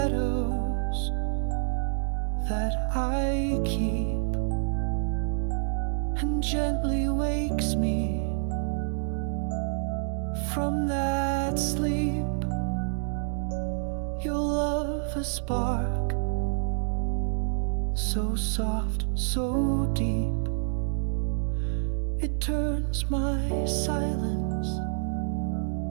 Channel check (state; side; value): silent; left; digital silence